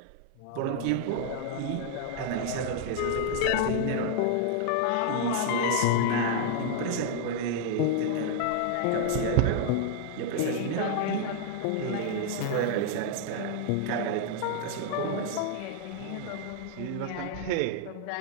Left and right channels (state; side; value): different; both; correlation 0.00